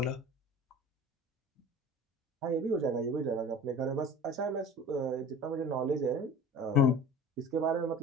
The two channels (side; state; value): both; normal; correlation 0.40